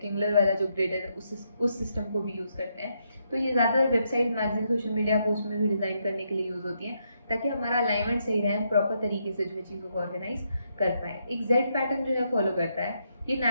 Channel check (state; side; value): inverted; both; correlation -0.78